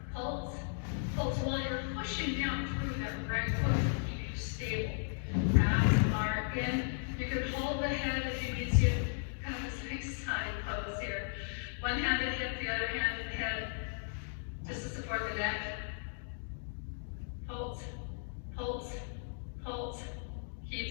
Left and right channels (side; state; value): right; silent; digital silence